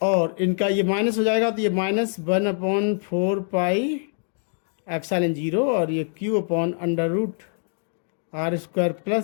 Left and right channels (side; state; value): right; silent; 60 dB below the other